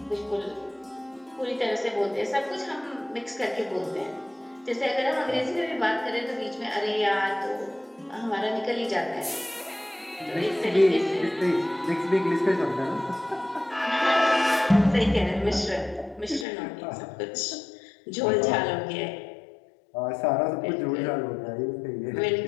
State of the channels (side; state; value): right; drops out; at 16.4 s